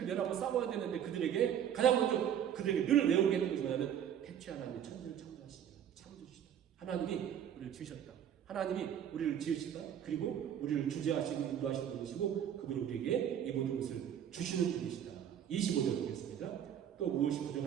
내라고 싸워야 되는데 그들에게 가장 먼저 그들에게 늘 외우게 했던 것이 뭐냐면 태초에 하나님이 천지를 창조하시다. 창조주시다. 하나님이 우리를 지으셨다. 하나님이 우리를 지으시다. 그리고 우리를 주재하시고 인도하시는 분이시고 그분이 우리에게 이 모든 것을 주시는 분이시다. 25절 보겠습니다. 또 무엇이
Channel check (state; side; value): quieter; left; 9.5 dB